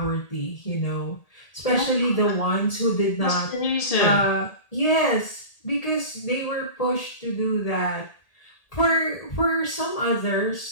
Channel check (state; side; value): late; right; 1.8 ms